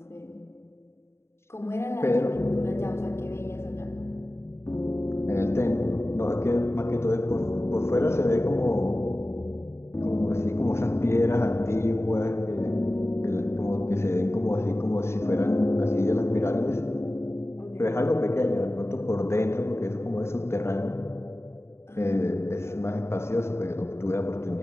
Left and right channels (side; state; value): right; late; 0.13 ms